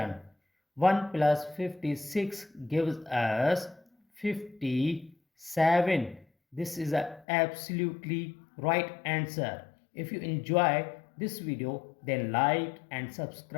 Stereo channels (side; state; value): right; drops out; at 7.2 s